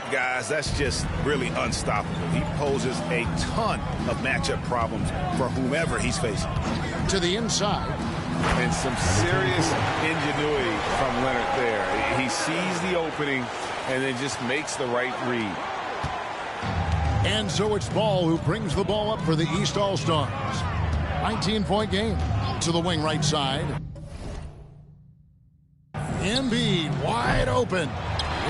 Guys, that's just really unstoppable. He poses a ton of matchup problems for whomever he's facing. To the inside. And some serious ingenuity from Leonard there. He sees the opening and then just makes the right read. And so it's Ball who brings the ball up for the East All-Stars. 19-point game. To the wing right side. Embiid wide open.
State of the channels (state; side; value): identical; both; correlation 1.00